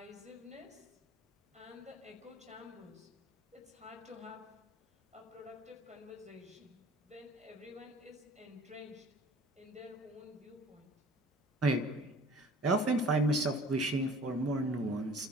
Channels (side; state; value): both; normal; correlation 0.49